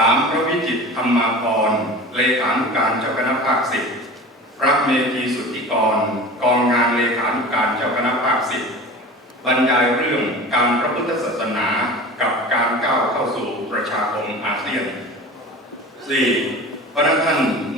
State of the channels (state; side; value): normal; both; correlation 0.36